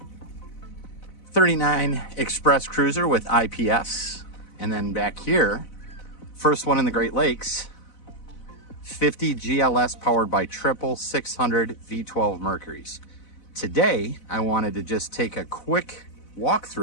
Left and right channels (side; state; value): right; late; 4.0 ms